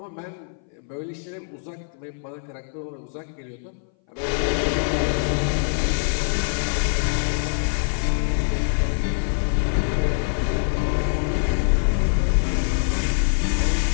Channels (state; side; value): silent; right; 59 dB below the other